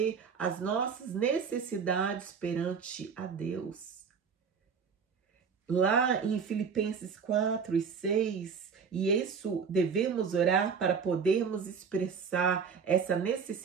as nossas necessidades perante a Deus. Lá em Filipenses 4 e 6, e isso devemos orar para podermos expressar essa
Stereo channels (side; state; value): left; quieter; 6.2 dB